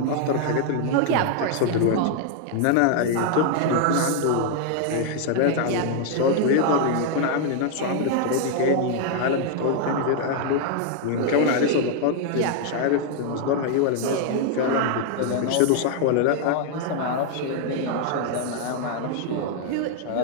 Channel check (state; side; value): different; both; correlation 0.00